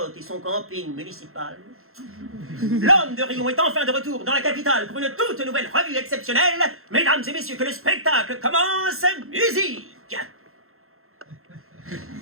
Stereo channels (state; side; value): late; left; 0.62 ms